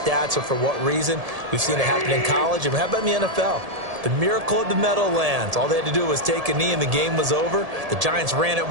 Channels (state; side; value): late; left; 1.7 ms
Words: or for what reason. We've seen it happen in college, and how about in the NFL? The miracle of the Meadowlands. All they had to do was take a knee and the game was over. The Giants ran it